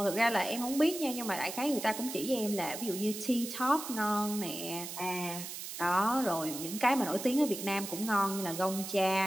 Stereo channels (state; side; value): noise; right; hiss, 8 dB below the sound